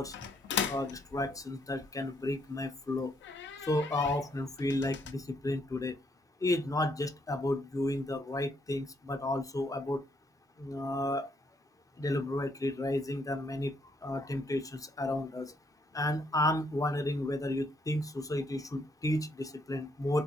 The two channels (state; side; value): normal; both; correlation 0.71